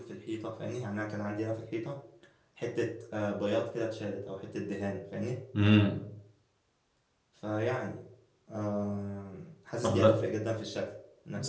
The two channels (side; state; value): both; identical; correlation 1.00